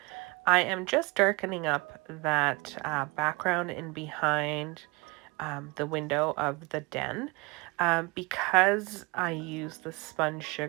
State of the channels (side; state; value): left; quieter; 26.0 dB